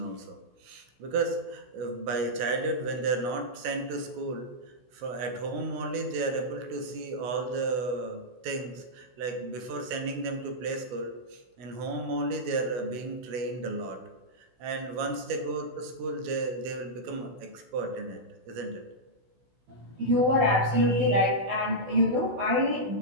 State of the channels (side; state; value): left; late; 16 ms